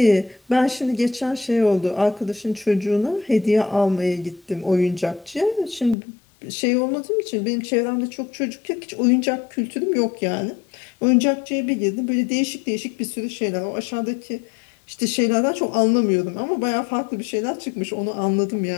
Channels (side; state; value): right; drops out; at 6.0 s